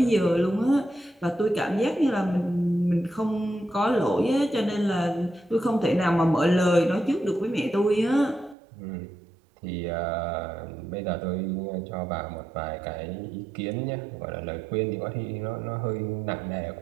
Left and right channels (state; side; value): drops out; left; at 8.6 s